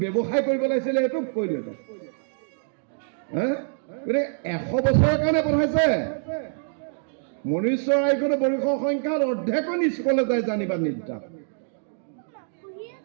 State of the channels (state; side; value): silent; left; digital silence